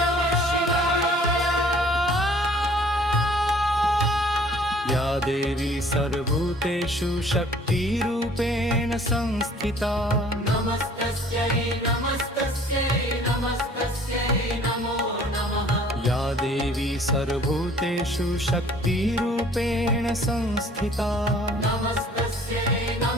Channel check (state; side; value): normal; both; correlation 0.54